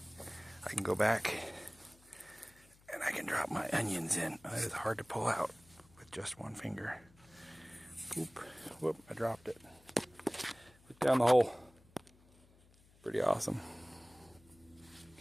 can go back and I can drop my onions in. That is hard to pull out with just one finger. Oop, whoop, I dropped it. Look down the hole. Pretty awesome.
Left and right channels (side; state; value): left; noise; hum, 27 dB below the sound